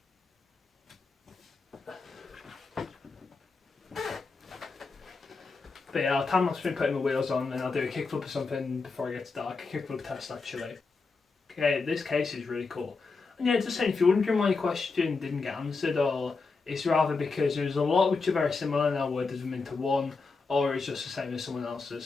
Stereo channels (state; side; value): quieter; right; 4.3 dB